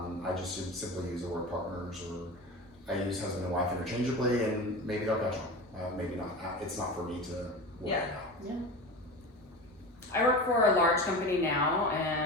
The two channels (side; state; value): both; normal; correlation 0.29